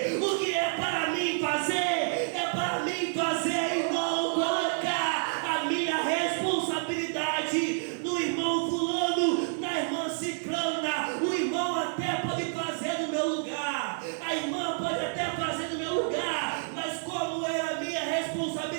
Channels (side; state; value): left; silent; digital silence